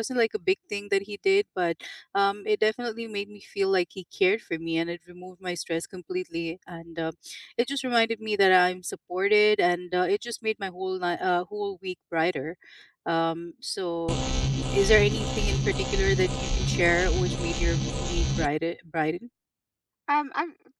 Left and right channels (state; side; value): identical; both; correlation 1.00